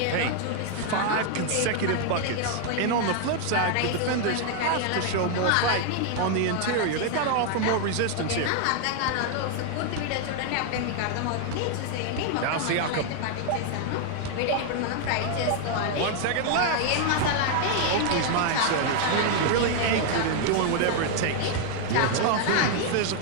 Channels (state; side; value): different; both; correlation 0.00